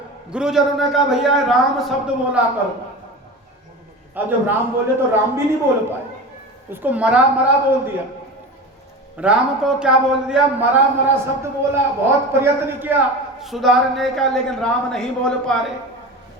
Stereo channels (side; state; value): both; normal; correlation 0.30